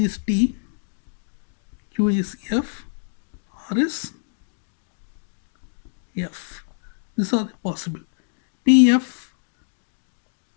is T, Q is F, or is F. These are the possible. PF,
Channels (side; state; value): right; silent; digital silence